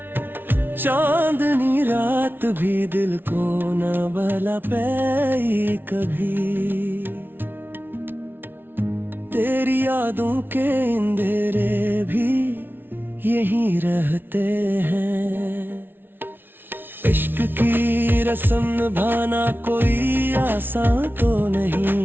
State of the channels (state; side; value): late; left; 0.10 ms